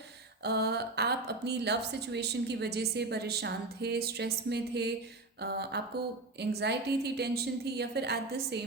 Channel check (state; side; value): quieter; left; 3.1 dB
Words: आप अपनी लव सिचुएशन की वजह से परेशान थे, स्ट्रेस में थे. आपको एंग्जाइटी थी, टेंशन थी, या फिर एट द